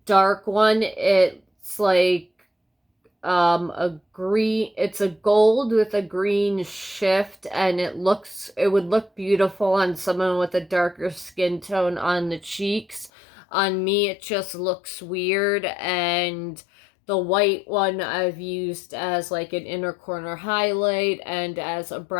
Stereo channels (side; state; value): right; drops out; at 13.1 s